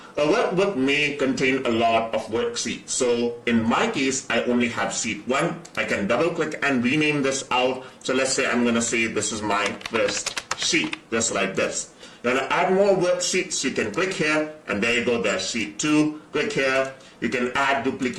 A workbook may contain a lot of worksheets. So in my case, I only have sheet 1. I can double click and rename this out. So let's say I'm going to say this is my first sheet, just like this. You want to add more worksheets, you can click here, and there you go, there's sheet 2. Click here, you can add,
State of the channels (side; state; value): both; identical; correlation 1.00